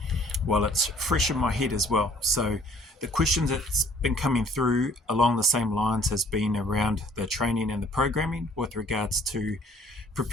while it's fresh in my head as well. So the questions that's been coming through along the same lines has been around the training and the programming with regards to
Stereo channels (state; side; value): normal; both; correlation 0.57